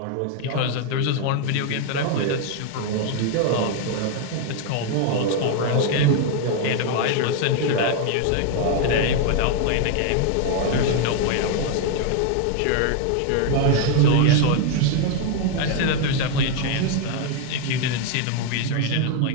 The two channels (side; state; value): both; different; correlation 0.01